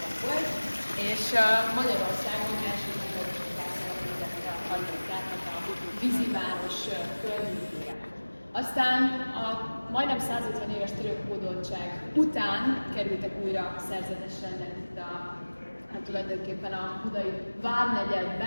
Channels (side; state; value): both; inverted; correlation -1.00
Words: volt, és Magyarországon első megvalósításra alapították a víziváros környékére. Aztán a majdnem 150 éves török hódoltság után kerültek újra szerzetes rendek itt tulajdonképpen a budai